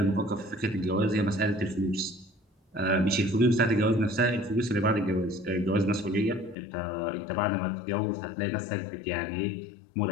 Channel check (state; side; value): drops out; right; at 6.6 s